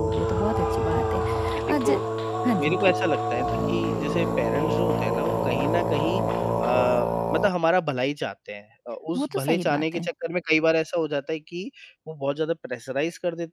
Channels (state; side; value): identical; both; correlation 1.00